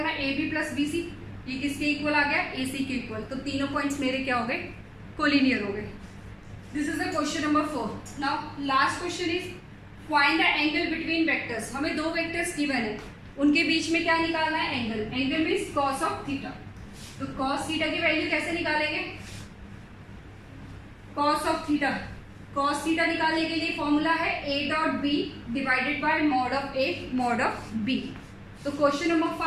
है, AB प्लस BC ये किसके इक्वल आ गया, AC के इक्वल। तो तीनों पॉइंट्स मेरे क्या हो गए, कोलिनियर हो गए। This is the question number 4। Now last question is find the angle between vectors. हमें दो वेक्टर्स गिवन है, उनके बीच में क्या निकालना है, angle. Angle means cos of theta. तो कॉस थीटा की वैल्यू कैसे निकालेंगे, cos of theta. Cos theta निकालने के लिए फॉर्मूला है a dot B divided by mod of a mod of b। तो क्वेश्चन नंबर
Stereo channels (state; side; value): identical; both; correlation 1.00